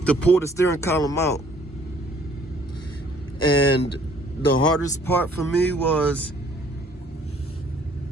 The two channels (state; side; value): normal; both; correlation 0.59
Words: to pull the steering column out. And the hardest part for me was